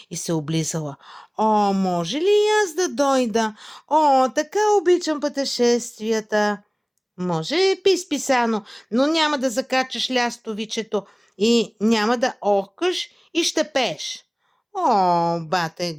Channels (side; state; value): both; identical; correlation 1.00